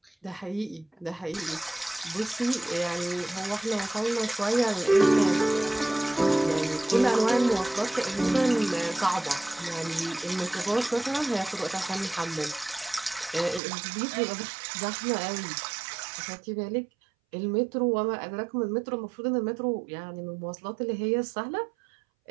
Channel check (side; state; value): left; drops out; at 13.6 s